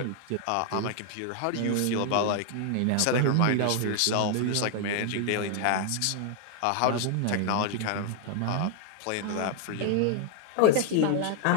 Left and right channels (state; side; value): different; both; correlation 0.00